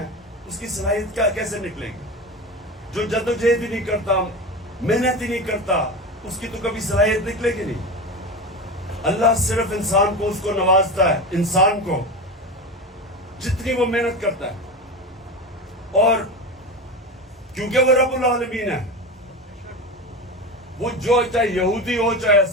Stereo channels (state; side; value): normal; both; correlation 0.24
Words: اس کی صلاحیت کیسے نکلے گی؟ جو جدوجہد ہی نہیں کرتا, محنت ہی نہیں کرتا, اس کی تو کبھی صلاحیت نکلے گی نہیں. اللہ صرف انسان کو اس کو نوازتا ہے, انسان کو جتنی وہ محنت کرتا ہے. اور کیونکہ وہ رب العالمین ہے, وہ جو چاہے یہودی ہو, چاہے